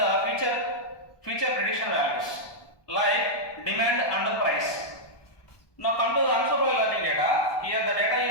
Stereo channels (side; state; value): right; late; 1.2 ms